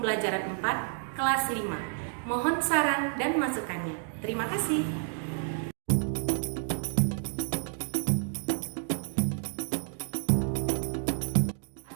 4, kelas 5. Mohon saran dan masukannya. Terima kasih.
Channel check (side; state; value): left; silent; digital silence